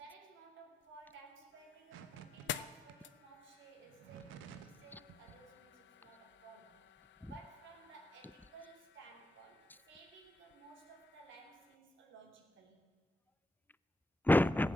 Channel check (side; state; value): both; normal; correlation 0.86